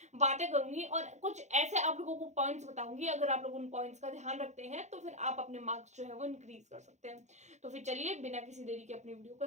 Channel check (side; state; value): left; late; 0.33 ms